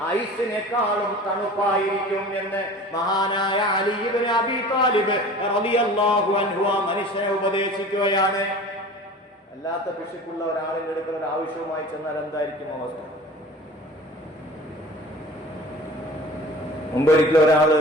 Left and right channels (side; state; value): both; normal; correlation 0.41